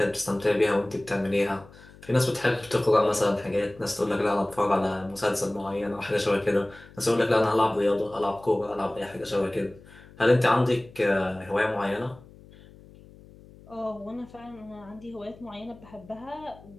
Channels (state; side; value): noise; left; hum, 22 dB below the sound